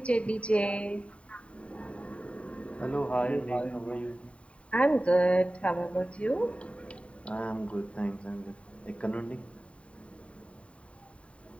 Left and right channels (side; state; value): right; late; 0.062 ms